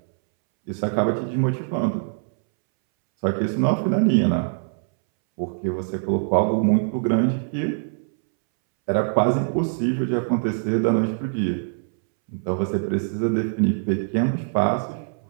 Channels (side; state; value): left; silent; 63 dB below the other